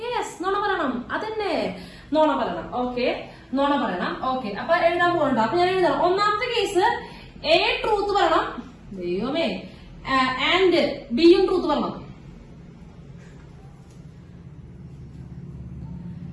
യെസ്, നുണ പറയണം. അതന്നെ, നുണ പറയണം. ഓക്കെ, നുണ പറയണം. ഓക്കെ, അപ്പൊ എഴുതാൻ പോകണ്ട. അപ്പൊ ഞാൻ എഴുതണം. ഒന്നാമത്തെ കേസ് എ ട്രൂത്ത് പറയണം, ദൈവമേ, ആൻഡ് ബിയും ട്രൂത്ത് പറയണം.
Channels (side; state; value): both; identical; correlation 1.00